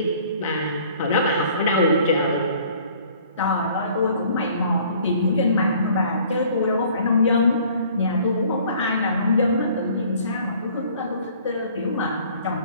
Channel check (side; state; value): both; inverted; correlation -0.55